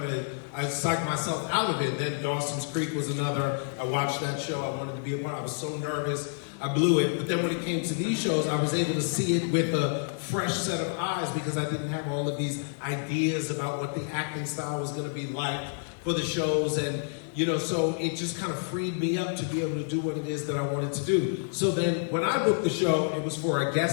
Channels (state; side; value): silent; right; 59 dB below the other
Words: of, I psyched myself out of it. Then Dawson's Creek was another. I watched that show. I wanted to be a part. I was so nervous. I blew it. But then when it came to these shows, I was able to see it with a fresh set of eyes because I didn't have all of these ideas about what the acting style was going to be like for the shows. And, you know, so it just kind of freed me up to be able to do what it is that I wanted to do. So then when I booked the show, it was for a